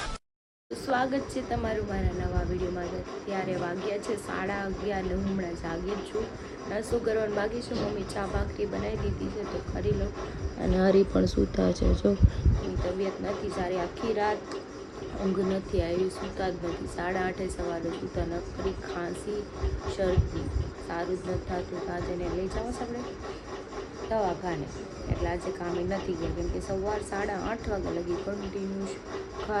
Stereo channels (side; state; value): both; identical; correlation 1.00